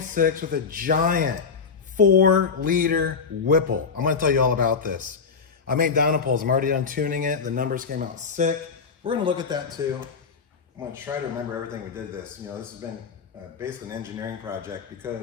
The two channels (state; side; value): quieter; right; 5.5 dB